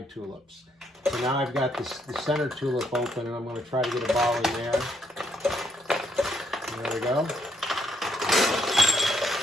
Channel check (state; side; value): normal; both; correlation 0.73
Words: tulips. So now I've got the center tulip open, and I'm going to try to get a ball in there. There we go.